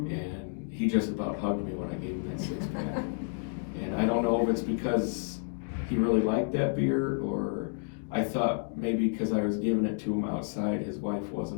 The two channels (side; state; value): right; silent; 57 dB below the other